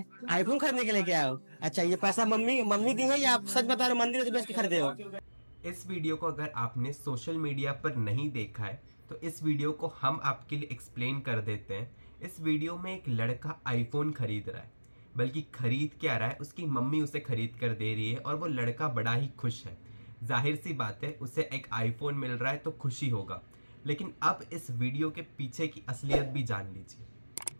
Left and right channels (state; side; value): inverted; both; correlation -1.00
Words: आईफोन खरीदने के लिए क्या हो? अच्छा, ये पैसा मम्मी मम्मी दी है या आप सच बता रहे हो मंदिर से बेच के खरीदे हो? इस वीडियो को अगर आपने सोशल मीडिया पर नहीं देखा है तो इस वीडियो को हम आपके लिए एक्सप्लेन कर देते हैं। इस वीडियो में एक लड़का आईफोन खरीद रहा है, बल्कि खरीद क्या रहा है, उसकी मम्मी उसे खरीद कर दे रही है और वो लड़का बड़ा ही खुश है। जाहिर सी बात है, उसे एक आईफोन मिल रहा है तो खुशी होगा। लेकिन अब इस वीडियो के पीछे की असलियत भी जान लीजिए।